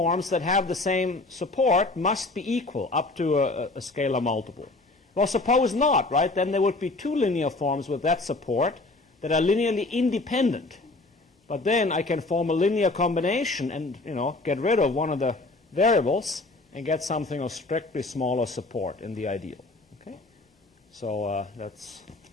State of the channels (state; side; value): quieter; right; 3.1 dB